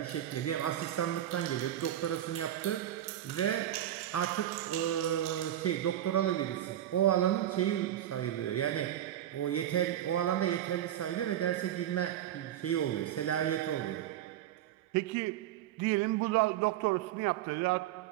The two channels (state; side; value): quieter; left; 11.9 dB